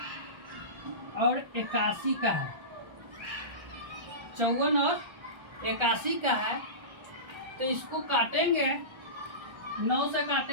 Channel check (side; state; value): left; late; 1.4 ms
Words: और 81 का है। 54 और 81 का है। तो इसको काटेंगे, 9 से